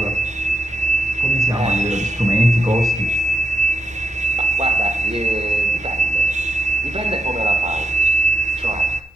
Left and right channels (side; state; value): both; normal; correlation 0.86